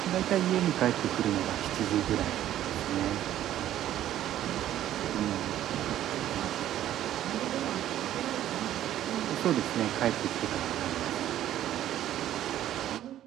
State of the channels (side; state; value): left; quieter; 12.3 dB